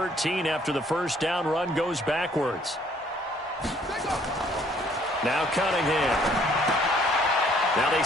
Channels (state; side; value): normal; both; correlation 0.62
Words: after the first down run goes backwards. Now Cunningham. Now they